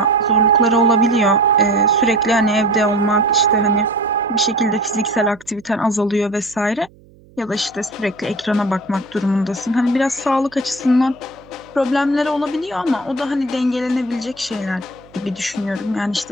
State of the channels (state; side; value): noise; right; hum, 27 dB below the sound